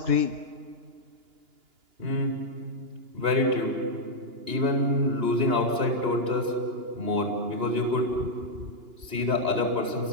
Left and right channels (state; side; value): late; left; 2.9 ms